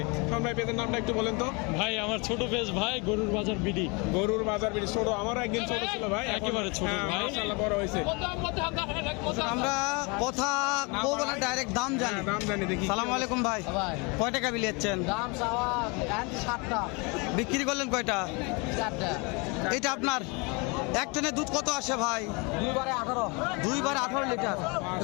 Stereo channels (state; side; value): quieter; right; 29.8 dB